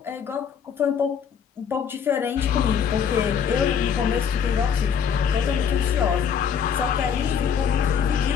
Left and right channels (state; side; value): quieter; right; 7.3 dB